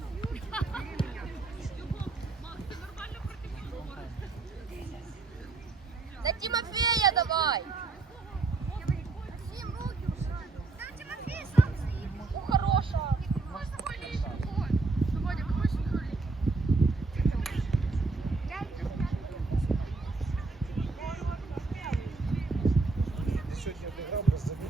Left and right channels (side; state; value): left; quieter; 3.8 dB